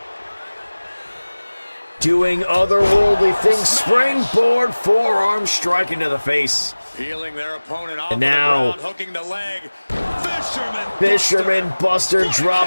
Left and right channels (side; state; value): both; inverted; correlation -1.00